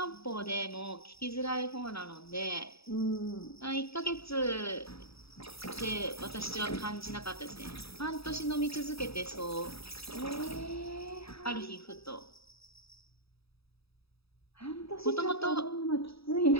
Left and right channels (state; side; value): late; right; 0.77 ms